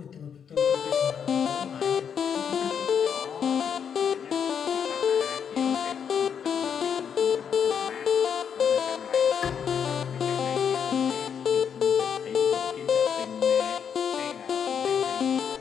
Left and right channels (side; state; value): right; quieter; 7.6 dB